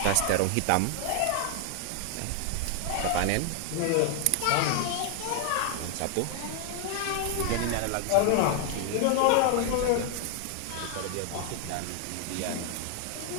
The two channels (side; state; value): both; different; correlation 0.00